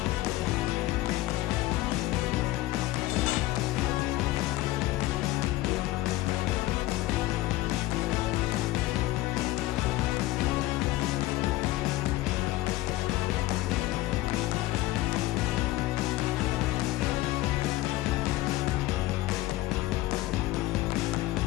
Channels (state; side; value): quieter; right; 17.5 dB